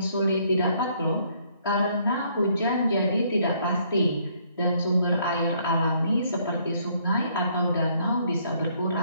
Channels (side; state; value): both; inverted; correlation -0.66